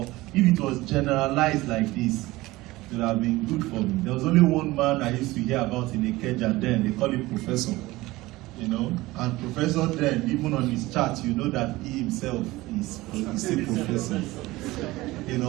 if it was generalized like this, it would have been good for me. There was only one man I used to hear about in Ikeja then, they call him Professor. You know, and Professor then, even on his chart, you know that he himself is a professor. You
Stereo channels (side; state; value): left; quieter; 19.3 dB